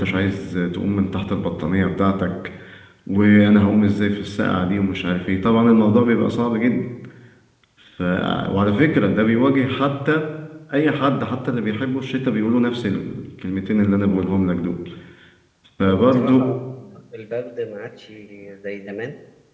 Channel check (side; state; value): both; identical; correlation 1.00